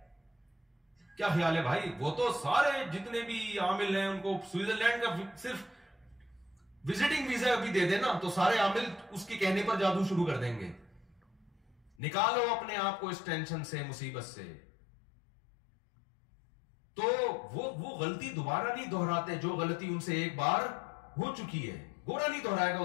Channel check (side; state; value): right; drops out; at 12.0 s